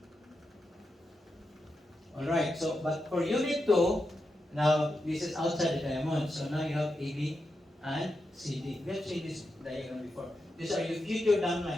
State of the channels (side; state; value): both; normal; correlation 0.87